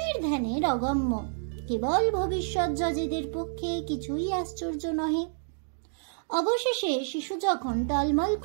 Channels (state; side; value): silent; left; digital silence